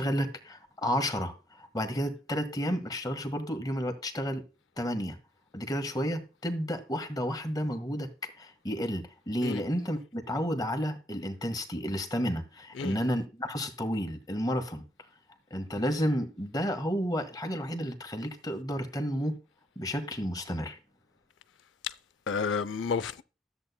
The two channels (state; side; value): normal; both; correlation 0.73